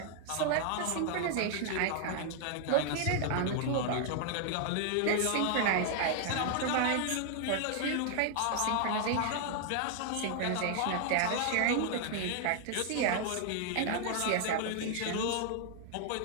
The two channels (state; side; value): different; both; correlation 0.00